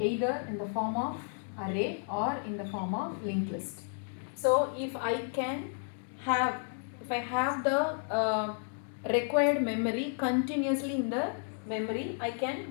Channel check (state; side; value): silent; right; 56 dB below the other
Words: in the form of array or in the form of linked list. So if I have the required memory continuously in the memory, I can